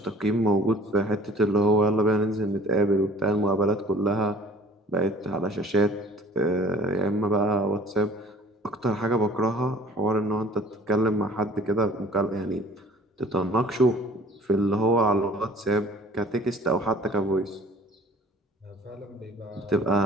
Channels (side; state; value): both; normal; correlation 0.50